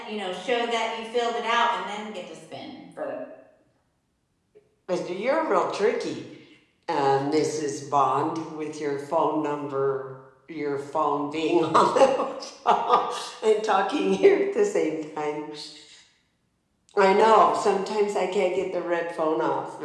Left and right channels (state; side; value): identical; both; correlation 1.00